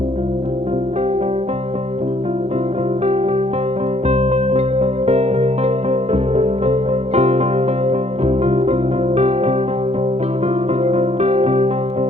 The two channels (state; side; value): late; left; 0.31 ms